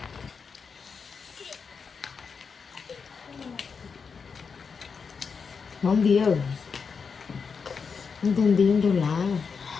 Món bia không tên tiếng đâu là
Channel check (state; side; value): quieter; right; 5.6 dB